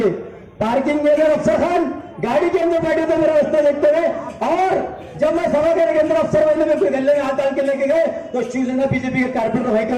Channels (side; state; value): both; identical; correlation 1.00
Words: पार्किंग में अफसर खान गाड़ी के अंदर बैठे थे मेरा रास्ता देखते हुए। और जब मैं सभा घर के अंदर अफसर वाले में कोई गले में हाथ डाल के लेके गए तो शिवसेना बीजेपी के कारपेटर भाई के